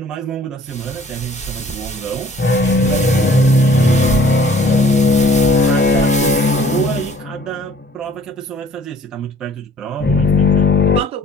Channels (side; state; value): both; normal; correlation 0.55